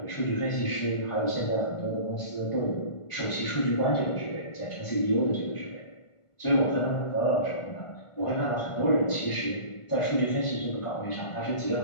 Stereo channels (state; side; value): late; right; 1.4 ms